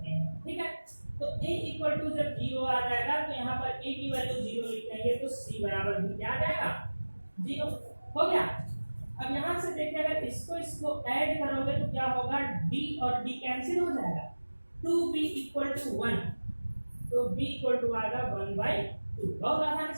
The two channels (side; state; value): both; inverted; correlation -1.00